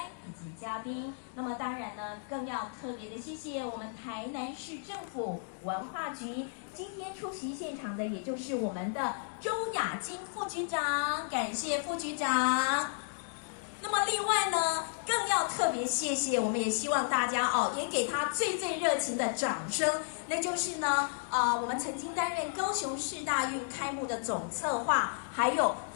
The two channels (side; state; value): right; silent; digital silence